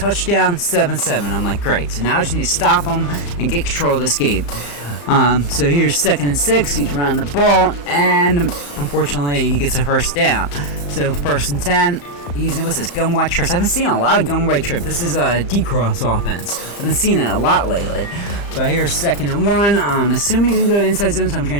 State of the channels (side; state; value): right; late; 35 ms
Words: 7-7. I'm like, great. So now I just need to stop him and get control of this game. So here's 2nd and 6. He's running the ball, and unfortunately he gets a 1st down. So 1st and 10. He's, what's this, gun white trips. I've been seeing a lot of gun white trip. This is a D-cross offense. I've been seeing it a lot lately. But here's 2nd and 1. Assuming he's going to go inside zone, so I'm